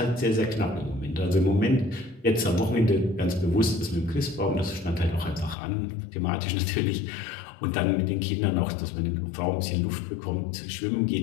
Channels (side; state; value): right; drops out; at 5.6 s